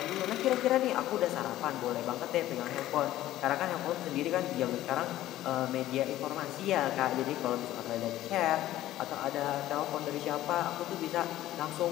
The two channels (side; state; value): right; quieter; 14.3 dB